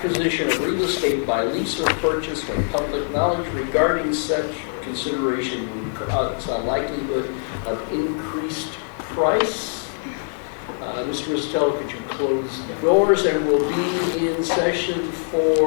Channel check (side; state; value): right; silent; digital silence